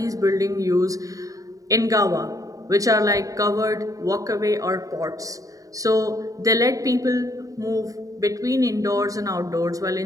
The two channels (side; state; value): left; late; 0.16 ms